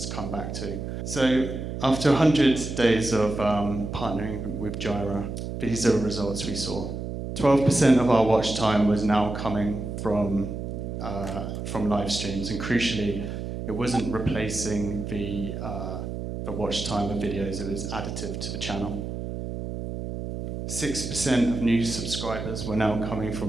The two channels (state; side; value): noise; right; hum, 6 dB below the sound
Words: to come back to. So after 100 days of partnering with GYRE, these are the results we saw. 12% of our watch time was now coming from live streams, and crucially, it wasn't replacing the watch time of videos, it was additive to the channel. 6% of new subscribers were now coming